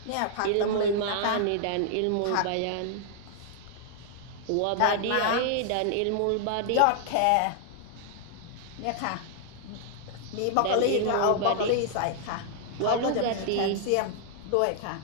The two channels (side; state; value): both; different; correlation -0.01